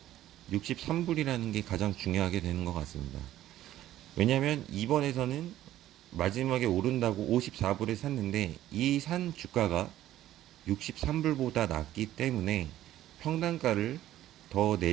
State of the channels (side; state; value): left; quieter; 13.5 dB